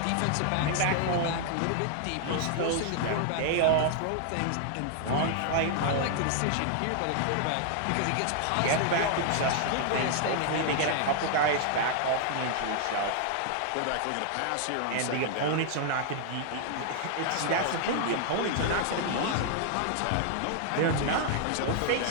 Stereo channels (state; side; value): different; both; correlation 0.00